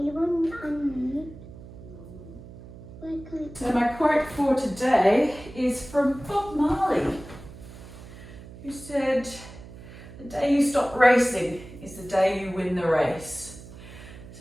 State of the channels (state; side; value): noise; right; hum, 16 dB below the sound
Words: So my quote for today is from Bob Marley, who said, "The day you stop racing is the day you win the race."